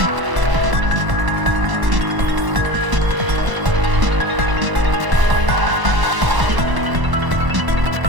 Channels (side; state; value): left; late; 1.0 ms